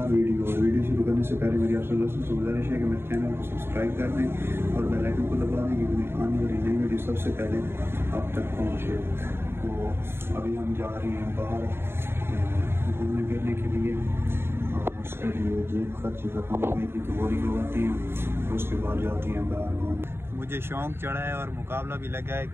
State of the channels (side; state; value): left; late; 0.11 ms